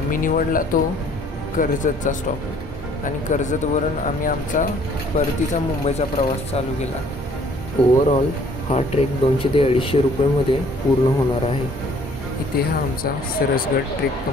निवडला तो कर्जतचा स्टॉप आणि कर्जतवरून आम्ही आमचा परतीचा मुंबईचा प्रवास चालू केला. ओव्हरऑल हा ट्रेक 200 ते 250 रुपयेमध्ये पूर्ण होणार आहे. इथे हा आमचा सरसगड ट्रेक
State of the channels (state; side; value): normal; both; correlation 0.59